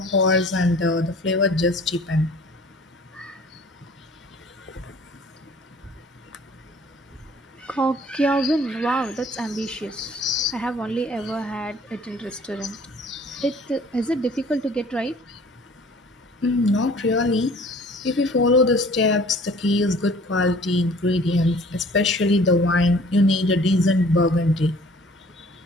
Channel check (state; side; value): normal; both; correlation 0.51